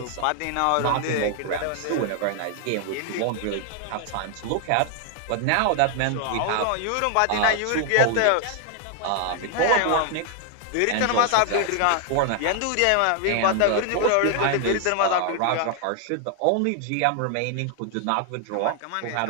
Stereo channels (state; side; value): different; both; correlation 0.00